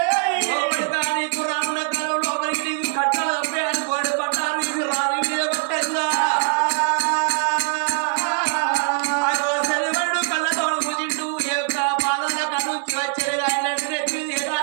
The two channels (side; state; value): left; silent; 60 dB below the other